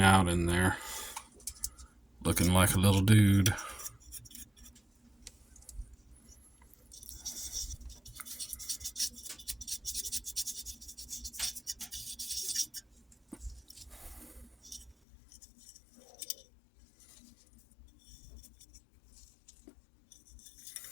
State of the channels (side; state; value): right; drops out; at 15.0 s